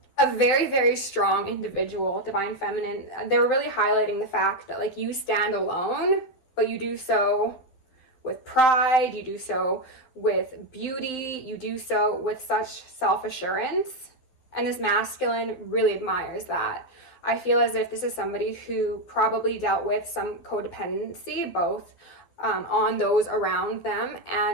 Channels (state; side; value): late; right; 12 ms